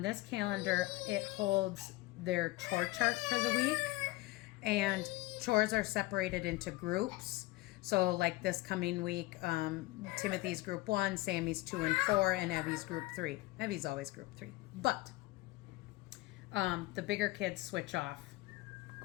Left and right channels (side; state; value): right; quieter; 20.0 dB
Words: this calendar, it holds their chore chart for the week. And chores are separated into groups. So like this coming week, Timothy's group 1, Sammy's 2 and 4, and Evie's group 3. Evie's always group 3. But the bigger kids switch off